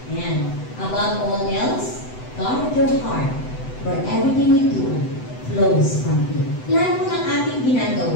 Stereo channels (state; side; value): late; right; 7.9 ms